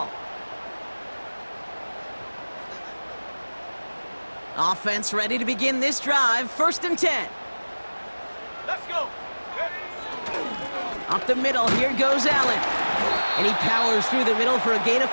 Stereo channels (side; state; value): both; inverted; correlation -1.00